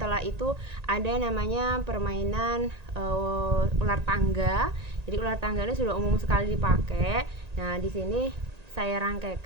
itu ada namanya permainan ular tangga. Jadi ular tangga ini sudah umum sekali dipakai. Nah, di sini saya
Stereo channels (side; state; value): left; late; 1.9 ms